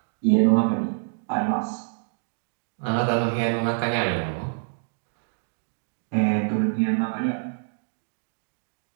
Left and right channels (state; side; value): silent; left; digital silence